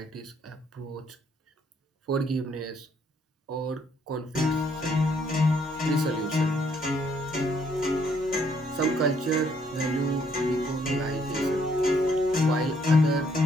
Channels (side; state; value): both; normal; correlation 0.68